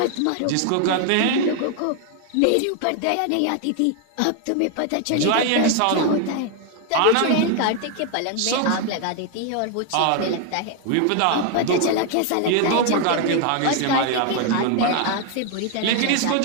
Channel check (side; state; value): both; different; correlation 0.01